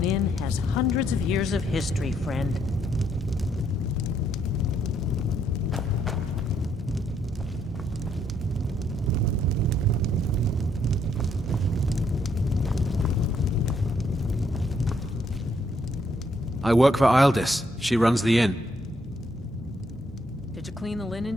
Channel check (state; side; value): normal; both; correlation 0.72